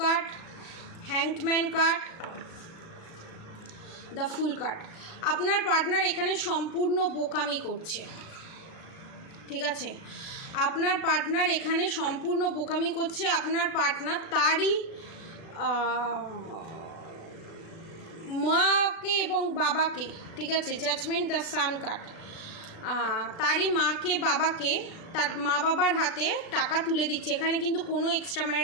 hanged man card, the fool card। আপনার পার্টনার এখানে সম্পূর্ণ বোকামি করছে, ঠিক আছে, আপনার পার্টনার এখানে সম্পূর্ণ বোকামি করছে। আপনার পার্টনার তারই মাকে এবং বাবাকে, ঠিক আছে, জাজমেন্ট, দ্য সান কার্ড, তারই মাকে বাবাকে, তার মা বাবার হাতে টাকা তুলে দিচ্ছে। এখানে কিন্তু কোনো এক্সট্রা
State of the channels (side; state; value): right; late; 36 ms